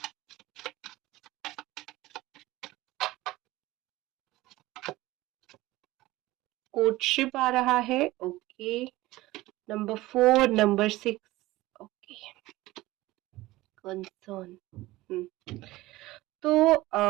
कोर्टशिप आ रहा है, okay. Number 4, number 6, okay. Concern, तो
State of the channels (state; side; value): quieter; left; 18.3 dB